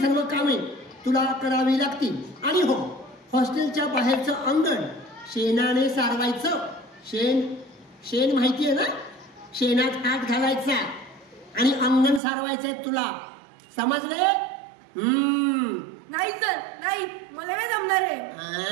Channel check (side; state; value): left; drops out; at 12.2 s